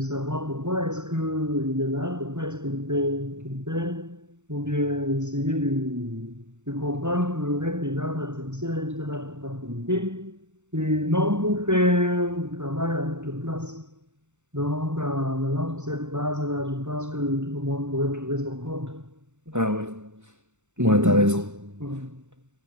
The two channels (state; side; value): late; left; 0.84 ms